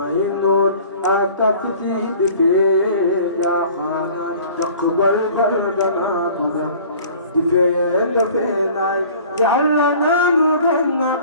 noot ak fiti di fee jaaxaan taqbal bal danaa ko def di fee dafee naay yàlla naa nu gën na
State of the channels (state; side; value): inverted; both; correlation -0.48